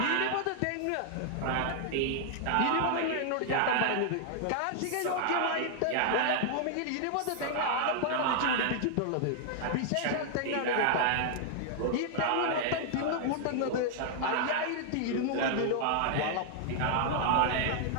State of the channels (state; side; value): different; both; correlation 0.00